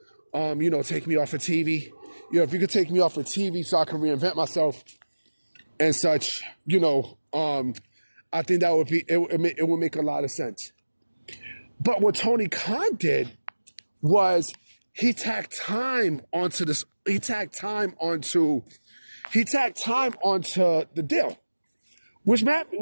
take me off of TV. You know, if you could take me off of TV so I can reinvent myself and such, you know, I think that would be, it would make a lot of sense. But what Tony Khan did was he tacked time onto the deal, which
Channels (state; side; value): inverted; both; correlation -1.00